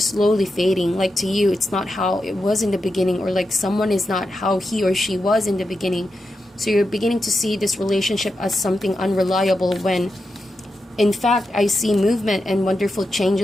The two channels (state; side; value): normal; both; correlation 0.88